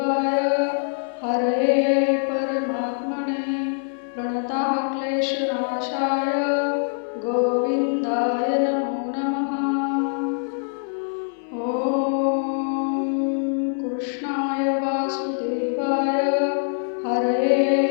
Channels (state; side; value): silent; right; 61 dB below the other